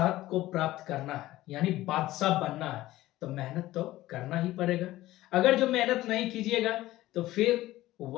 को प्राप्त करना है यानी बादशाह बनना है तो मेहनत तो करना ही पड़ेगा। अगर जो मेहनत नहीं कीजिएगा तो फिर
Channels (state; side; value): quieter; right; 16.2 dB